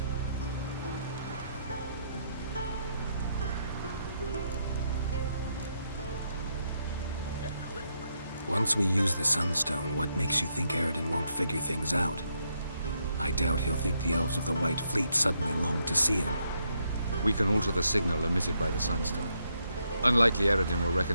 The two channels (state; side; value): inverted; both; correlation -0.77